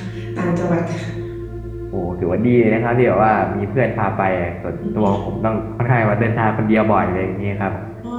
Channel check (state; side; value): identical; both; correlation 1.00